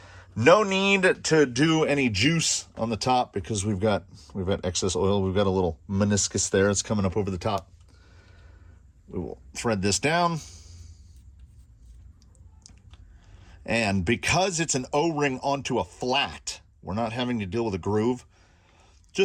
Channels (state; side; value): identical; both; correlation 1.00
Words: No need to do any juice on the top because we've got excess oil. We've got a little meniscus there. It's coming up over the top. We will thread this down. And because it's an O-ring onto a flat, we're not having to deal with a groove.